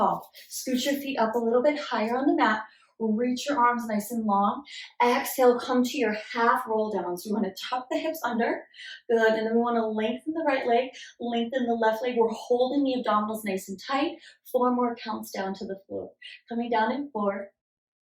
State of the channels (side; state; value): both; identical; correlation 1.00